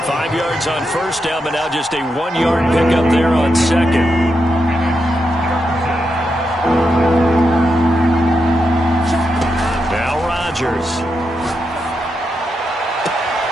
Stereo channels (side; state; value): both; normal; correlation 0.85